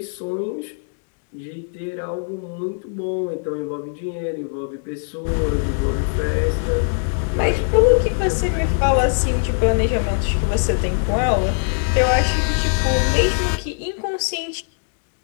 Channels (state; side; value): silent; right; 63 dB below the other